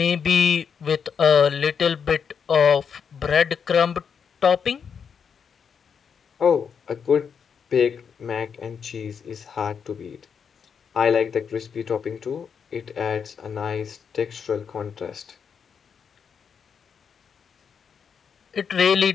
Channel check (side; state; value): right; quieter; 6.8 dB